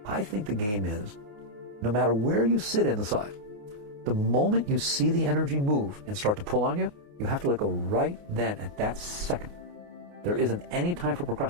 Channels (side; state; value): left; late; 28 ms